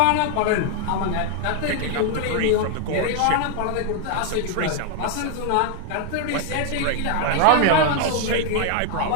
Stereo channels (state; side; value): different; both; correlation 0.00